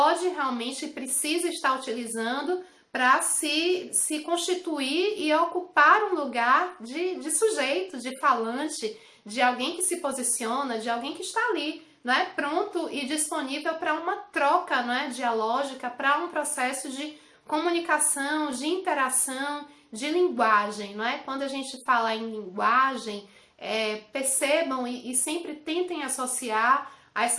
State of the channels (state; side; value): identical; both; correlation 1.00